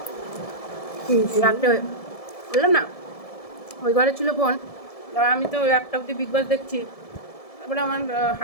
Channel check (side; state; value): right; late; 1.7 ms